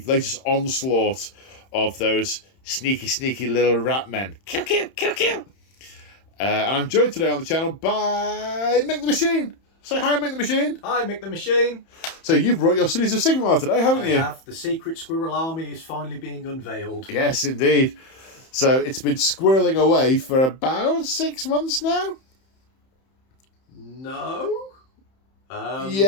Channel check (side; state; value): right; late; 31 ms